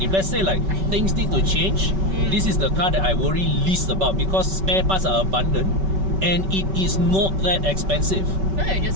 If let's say like things need to change, this is the car that I worry least about, because spare parts are abundant. and it is not that expensive. No, you're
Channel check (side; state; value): left; late; 5.2 ms